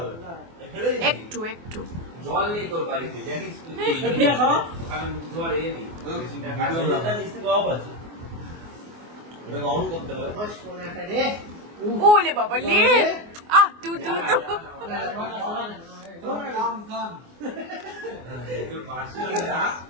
একটু একটু জল নেই তোর বাড়িতে জানিস অন করতে হবে। ওলে বাবা লে তু তু তু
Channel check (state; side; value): late; left; 24 ms